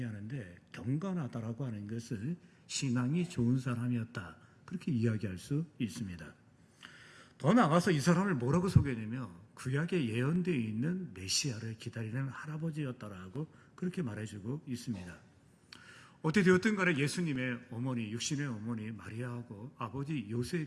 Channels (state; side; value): identical; both; correlation 1.00